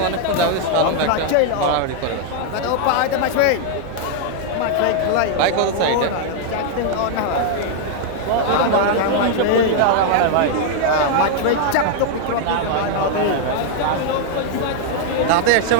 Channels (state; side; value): different; both; correlation 0.00